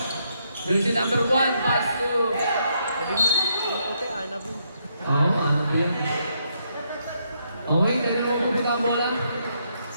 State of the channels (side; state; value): both; inverted; correlation -0.76